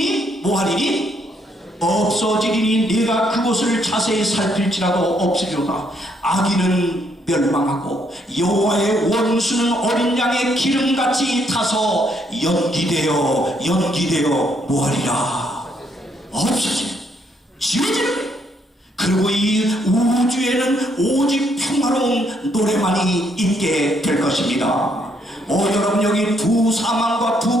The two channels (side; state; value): both; normal; correlation 0.72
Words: 뭐하리니? 없어지리니 내가 그곳을 자세히 살필지라도 없으리로다. 악인은 멸망하고 여호와의 원수는 어린 양의 기름같이 타서 연기되어 뭐하리라? 없어지는, 지워지는 거예요. 그리고 이 우주에는 오직 평화로운 노래만이 있게 될 것입니다. 여러분, 여기 두 사망과